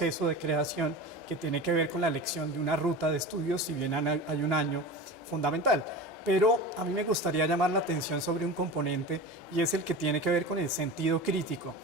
de creación que tiene que ver con la elección de una ruta de estudios, si bien hay un año fundamental. Pero a mí me gustaría llamar la atención sobre un componente y es el que tiene que ver con el sentido crítico.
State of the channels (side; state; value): both; normal; correlation 0.31